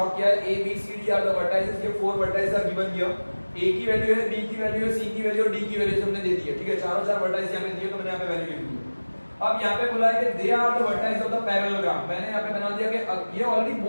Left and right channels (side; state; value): both; inverted; correlation -1.00